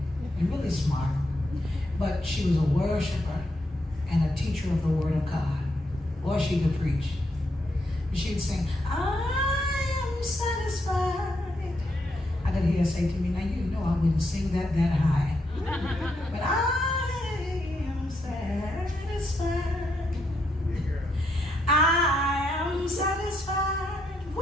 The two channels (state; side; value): normal; both; correlation 0.79